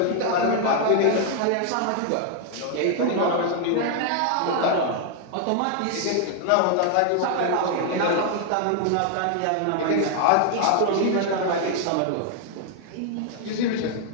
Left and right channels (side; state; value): both; different; correlation 0.00